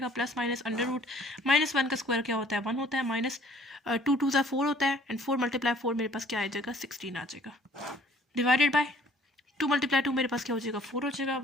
प्लस माइनस अंडर रूट -1 का स्क्वायर क्या होता है 1 होता है, माइनस 2 2 सा 4 होता है एंड 4 × 4 मेरे पास क्या आ जाएगा 16 आ जाएगा, डिवाइडेड बाय 2 × 2 मेरे पास क्या हो जाएगा 4 हो जाएगा।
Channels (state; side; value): normal; both; correlation 0.56